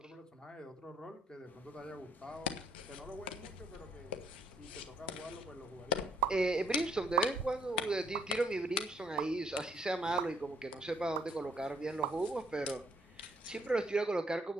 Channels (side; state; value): both; normal; correlation 0.66